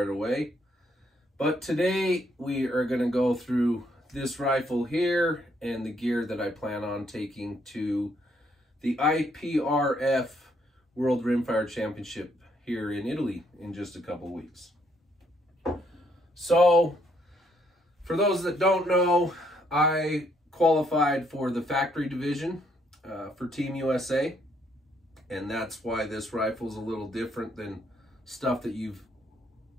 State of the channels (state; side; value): normal; both; correlation 0.71